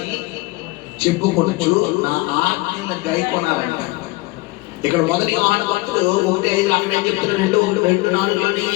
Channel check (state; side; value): quieter; right; 21.9 dB